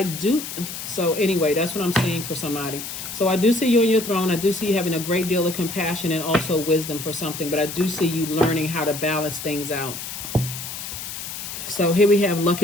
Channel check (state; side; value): noise; left; hiss, 8 dB below the sound